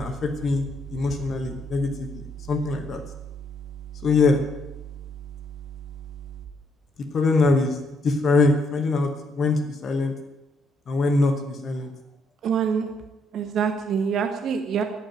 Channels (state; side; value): normal; both; correlation 0.72